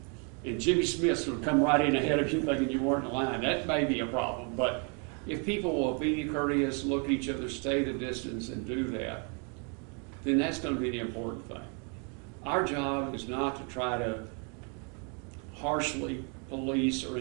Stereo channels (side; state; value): left; quieter; 37.2 dB